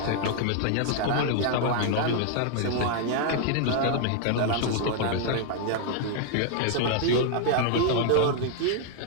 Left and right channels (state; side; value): different; both; correlation 0.00